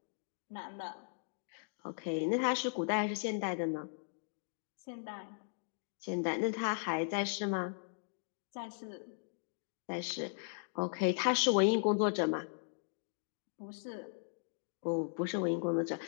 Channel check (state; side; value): silent; right; digital silence